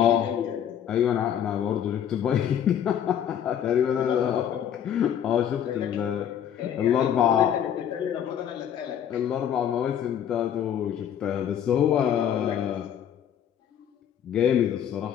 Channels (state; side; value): quieter; right; 9.4 dB